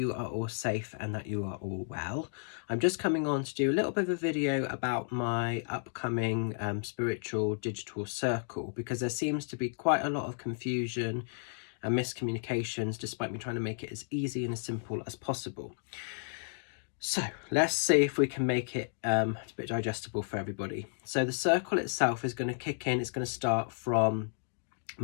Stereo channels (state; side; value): silent; right; digital silence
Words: are all safe and that you are all well. I'm just coming on to do a little bit of a video about my upcoming spiritual digital circle, because there seems to be quite a lot of confusion and miscommunications despite me trying to make it as easy and as simple as possible. So let's see if we can make it a bit digestible for everybody. So the circle itself is going to kick in, it's going to start from